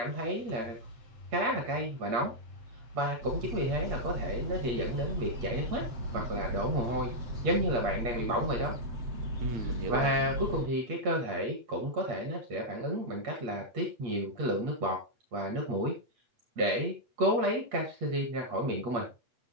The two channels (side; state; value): left; late; 8.4 ms